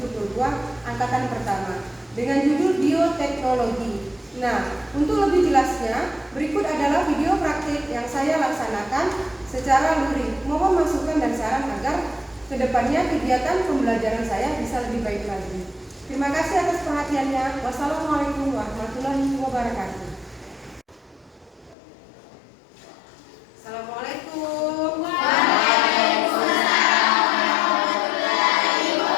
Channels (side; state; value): right; drops out; at 21.8 s